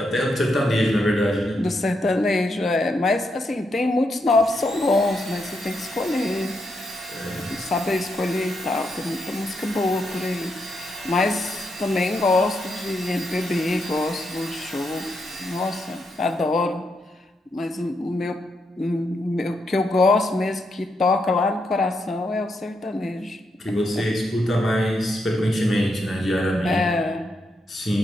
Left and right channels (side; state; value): both; normal; correlation 0.81